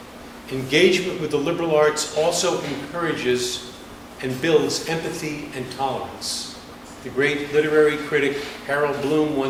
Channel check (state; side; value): identical; both; correlation 1.00